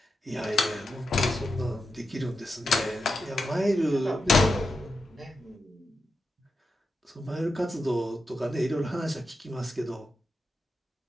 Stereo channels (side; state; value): both; normal; correlation 0.88